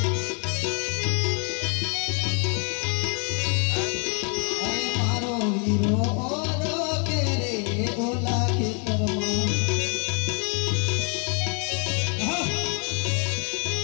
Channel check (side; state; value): right; quieter; 37.6 dB